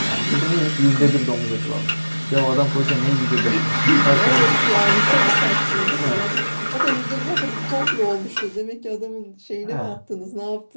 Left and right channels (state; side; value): inverted; both; correlation -1.00